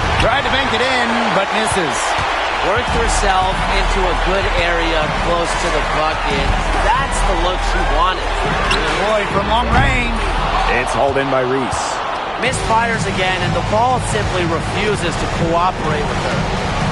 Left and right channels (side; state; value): both; identical; correlation 1.00